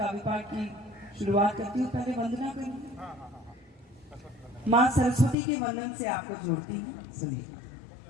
पाठ की शुरुआत करती हूँ। पहले वंदना करूँगी, माँ सरस्वती के वंदन से आपको जोड़ती हूँ, सुनिए।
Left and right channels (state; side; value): drops out; right; at 5.4 s